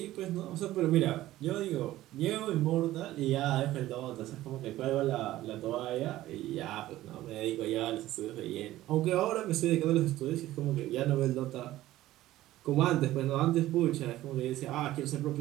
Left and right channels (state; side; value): quieter; left; 15.3 dB